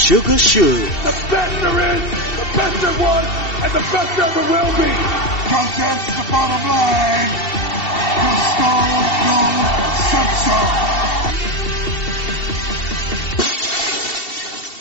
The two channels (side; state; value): right; late; 2.7 ms